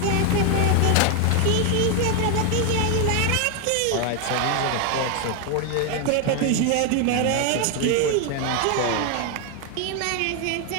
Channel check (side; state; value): both; different; correlation 0.01